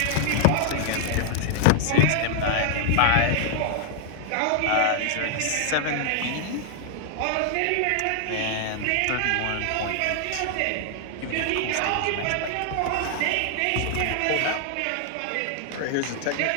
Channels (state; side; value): different; both; correlation 0.00